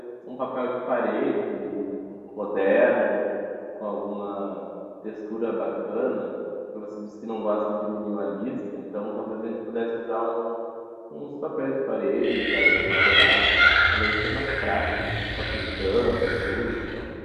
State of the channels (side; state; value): both; identical; correlation 1.00